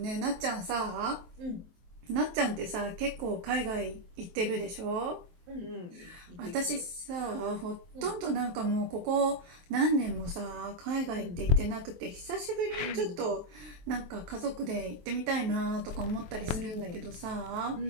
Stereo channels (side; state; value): left; late; 23 ms